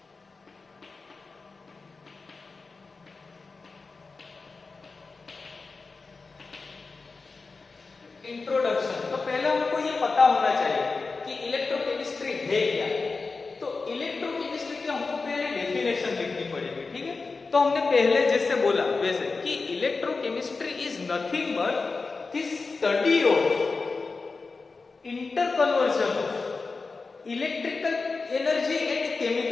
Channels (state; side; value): quieter; right; 4.1 dB